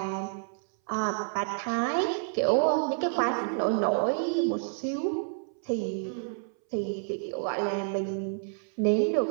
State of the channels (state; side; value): silent; left; 58 dB below the other